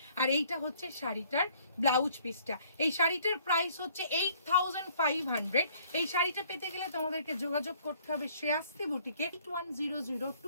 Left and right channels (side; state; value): both; inverted; correlation -0.60